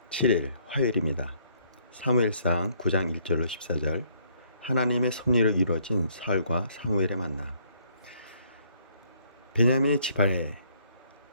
7일 화요일입니다. 사무엘상 9장 1절로 14절. 하나님의 섭리로 이루어진 사울과 사무엘의 만남. 베냐민의 지파에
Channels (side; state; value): both; inverted; correlation -0.66